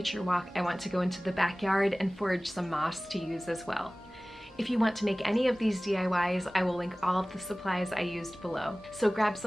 walk, I want to go into the backyard and forage some moss to use as well. If you want to make any of these DIYs, I will link all of the supplies I used below. So grab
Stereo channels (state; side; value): normal; both; correlation 0.98